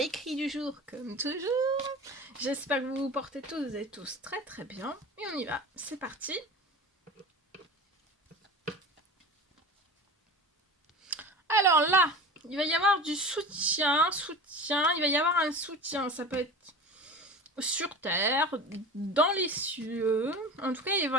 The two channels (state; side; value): normal; both; correlation 0.33